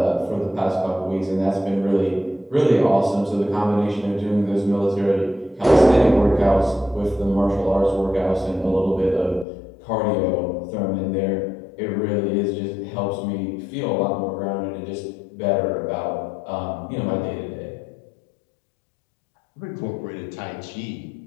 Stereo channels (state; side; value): drops out; right; at 9.5 s